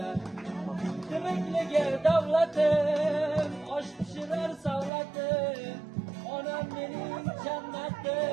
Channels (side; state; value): left; drops out; at 4.9 s